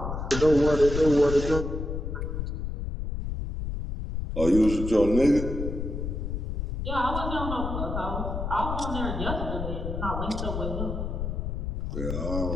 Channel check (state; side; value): noise; left; rumble, 4 dB below the sound